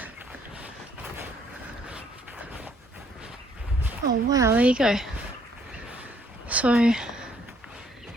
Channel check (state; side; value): normal; both; correlation 0.66